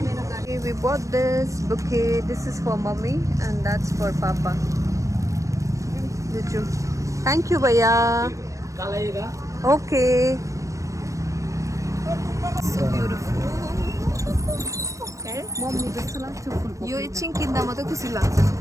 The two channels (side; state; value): left; late; 0.15 ms